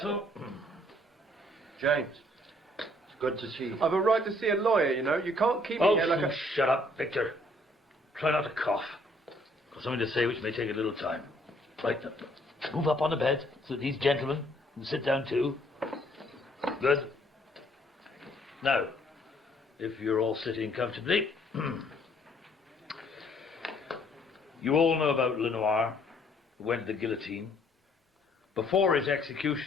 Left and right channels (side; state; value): both; normal; correlation 0.64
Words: James. It's good to see you. I've a right to see a lawyer, you know. You can't keep me here like a... Shut up, Victor. Try not to cough. Got something to say which may take a little time. Right, move up on the bed so these gentlemen can sit down too. Good. Now, if you're all sitting comfortably, you all know about Lenoir, who went to the guillotine. Before his